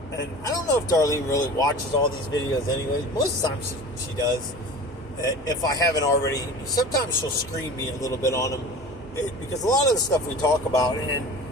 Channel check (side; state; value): both; normal; correlation 0.38